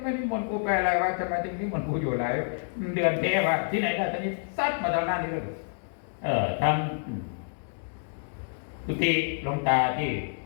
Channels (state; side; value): silent; right; digital silence